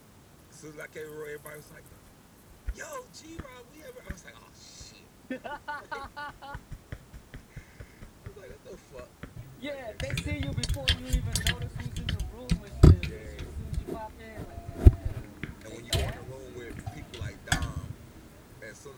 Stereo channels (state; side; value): identical; both; correlation 1.00